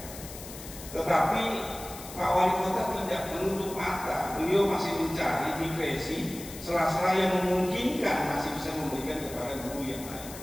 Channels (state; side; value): noise; left; hiss, 13 dB below the sound